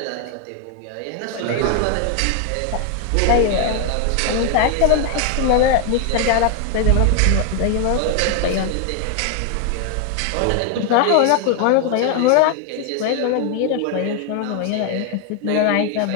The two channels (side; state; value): both; different; correlation 0.00